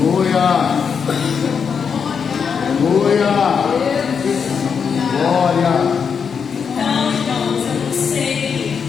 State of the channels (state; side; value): quieter; right; 6.5 dB